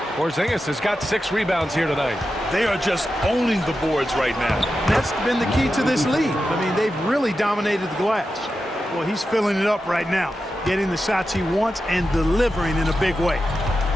Porzingis has got 6 rebounds here tonight. They are just owning the boards right now. That's been the key to this lead. I mean, they've really dominated the glass. Well, he's filling it up right now, getting the shots he wants and delivering in a big way.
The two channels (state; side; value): normal; both; correlation 0.90